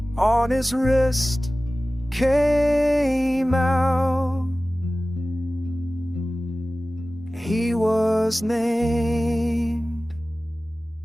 on his wrist, came out. He was named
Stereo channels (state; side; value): normal; both; correlation 0.97